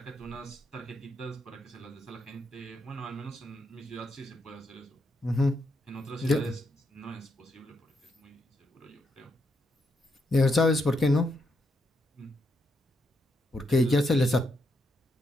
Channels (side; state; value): both; normal; correlation 0.80